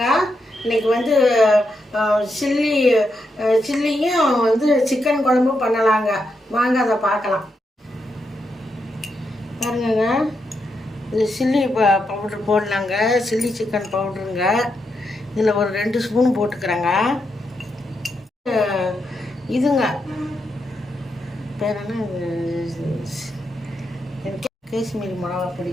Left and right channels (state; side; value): normal; both; correlation 0.83